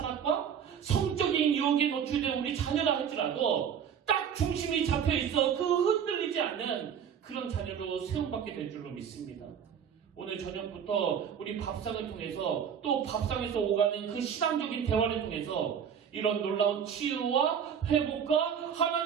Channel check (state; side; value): quieter; left; 8.0 dB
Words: 성적인 유혹에 노출된 우리 자녀라 할지라도 딱 중심이 잡혀있어 그 흔들리지 않는 그런 자녀로 세움받게 될 줄로 믿습니다. 오늘 저녁부터 우리 밥상을 통해서 또 밥상에서 오가는 그 신앙적인 대화를 통해서 이런 놀라운 치유와 회복과